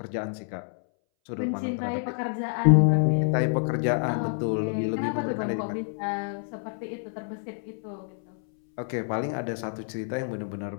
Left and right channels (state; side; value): silent; right; 60 dB below the other